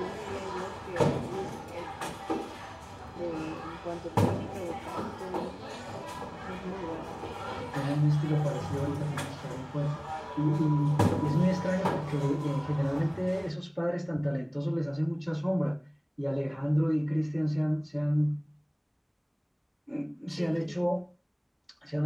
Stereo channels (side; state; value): both; identical; correlation 1.00